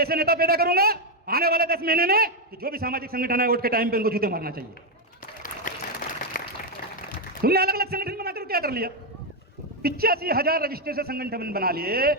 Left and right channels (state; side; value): normal; both; correlation 0.03